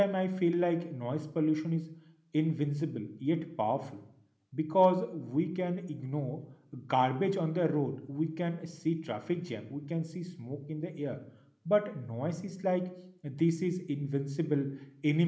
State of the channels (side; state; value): both; identical; correlation 1.00